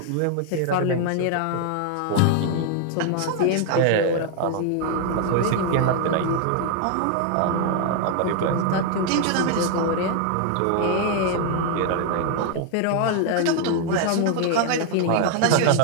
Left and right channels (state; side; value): different; both; correlation 0.00